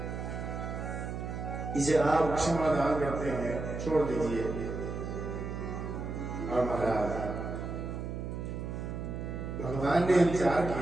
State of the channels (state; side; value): noise; right; hum, 5 dB below the sound